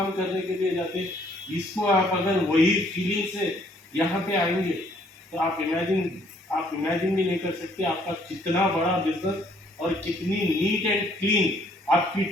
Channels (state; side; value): normal; both; correlation 0.64